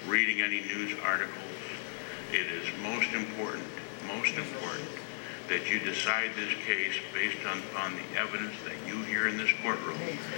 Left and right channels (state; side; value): silent; right; 55 dB below the other